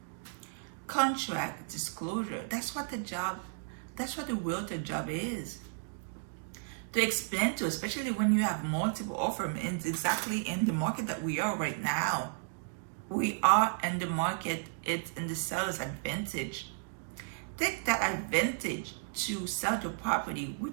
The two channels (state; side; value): silent; left; digital silence